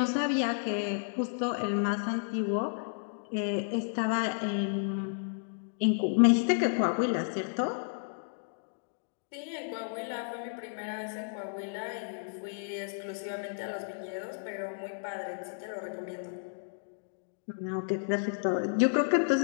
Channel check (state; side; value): silent; right; digital silence